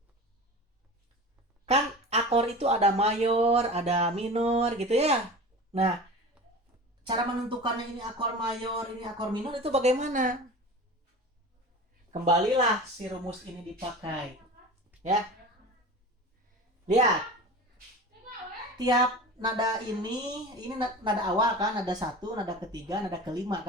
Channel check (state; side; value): normal; both; correlation 0.34